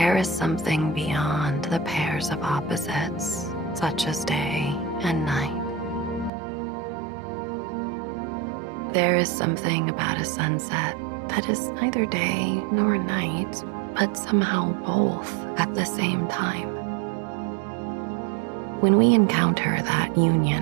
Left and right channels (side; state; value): left; drops out; at 6.3 s